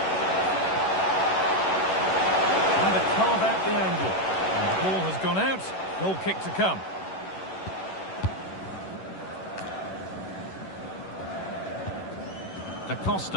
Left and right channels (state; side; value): late; right; 11 ms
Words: Trying to carve out the angle. And the ball has gone out. Goal kick to come. Da